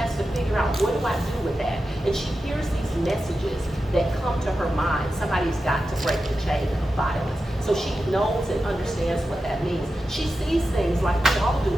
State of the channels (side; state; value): both; normal; correlation 0.91